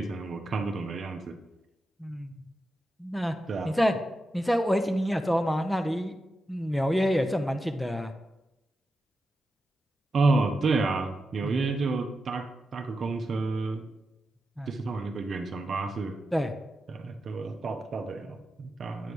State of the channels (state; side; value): normal; both; correlation 0.89